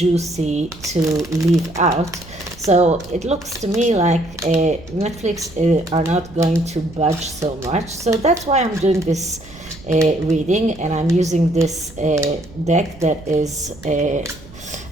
to leave out. So it looks to me like Netflix are not going to budge so much. So that's why I'm doing this reading, and I'm using this deck that is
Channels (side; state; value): right; noise; rumble, 19 dB below the sound